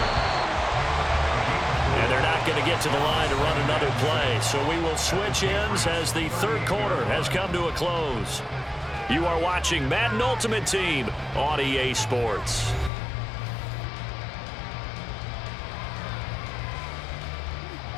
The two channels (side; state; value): right; drops out; at 12.9 s